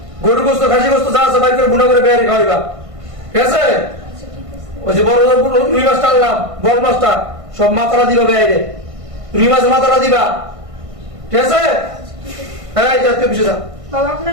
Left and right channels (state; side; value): late; left; 1.5 ms